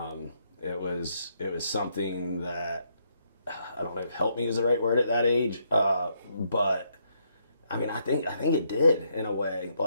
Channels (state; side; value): inverted; both; correlation -0.75